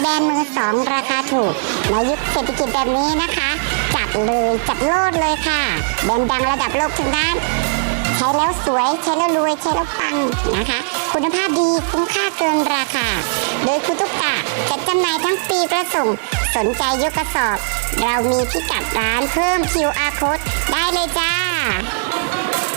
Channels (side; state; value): left; silent; digital silence